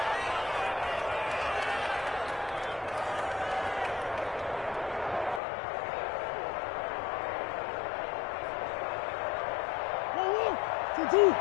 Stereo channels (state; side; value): drops out; right; at 5.4 s